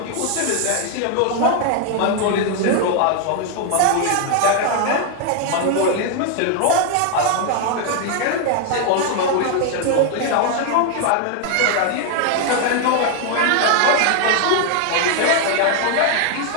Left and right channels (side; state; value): both; different; correlation 0.00